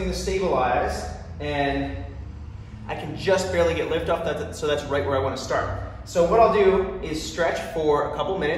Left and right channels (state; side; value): identical; both; correlation 1.00